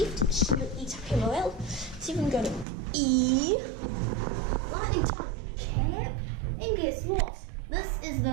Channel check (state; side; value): drops out; left; at 2.7 s